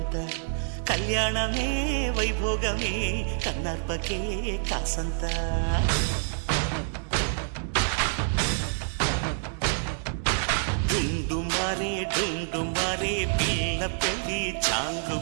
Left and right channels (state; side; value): silent; left; digital silence